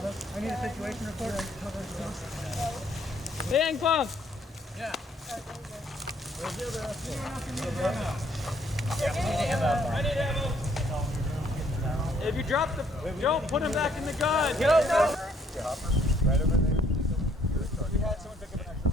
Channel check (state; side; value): normal; both; correlation 0.65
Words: need a situation report. Liang Punk! I need ammo. If you drop the, don't put him back in the gun. Get up now. Right over there. We had someone pick up an extra